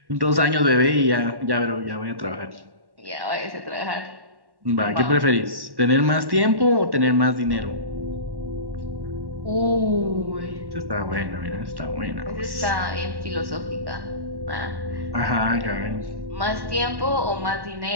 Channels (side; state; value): left; late; 1.1 ms